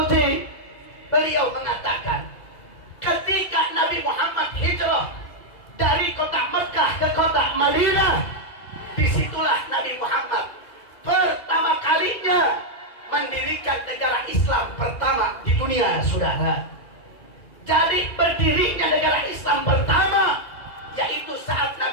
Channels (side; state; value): right; late; 2.0 ms